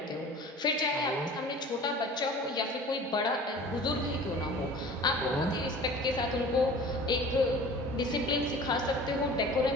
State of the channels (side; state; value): both; normal; correlation 0.42